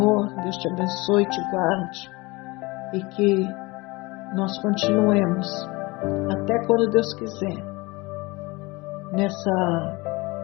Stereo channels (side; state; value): right; quieter; 23.6 dB